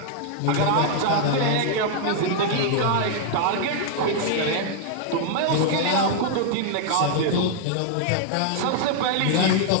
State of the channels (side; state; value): both; different; correlation 0.00